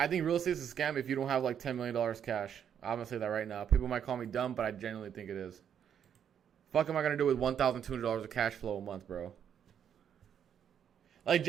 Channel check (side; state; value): left; quieter; 8.7 dB